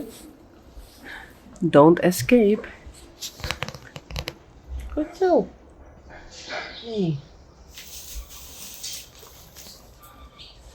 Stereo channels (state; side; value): identical; both; correlation 1.00